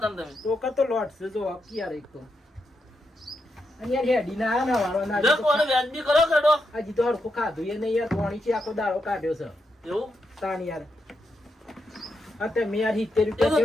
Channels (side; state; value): both; normal; correlation 0.84